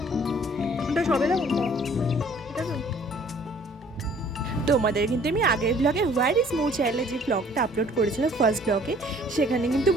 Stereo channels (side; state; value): both; normal; correlation 0.56